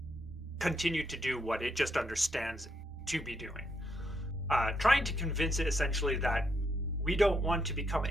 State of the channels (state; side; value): normal; both; correlation 0.78